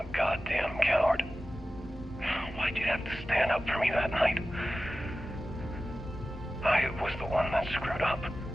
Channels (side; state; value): both; normal; correlation 0.95